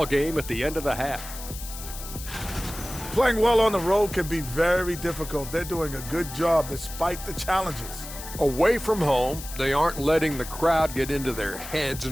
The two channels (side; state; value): left; noise; hiss, 12 dB below the sound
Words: game at the end of the half. Playing well on the road can be very difficult. They're doing a good job despite the challenges. Away from home, they aren't letting the crowd get into their heads.